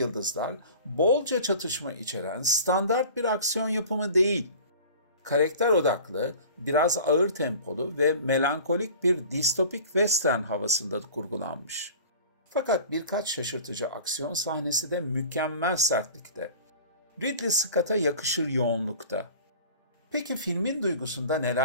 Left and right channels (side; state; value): both; inverted; correlation -0.42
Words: bolca çatışma içeren standart bir aksiyon yapımı değil. Karakter odaklı, biraz ağır tempolu ve melankolik bir distopik western havasında kurgulanmış. Fakat birkaç şaşırtıcı aksiyon sahnesi de mükemmel sertlikte. Ridley Scott'a yakışır yoğunlukta. Peki filmin duygusunda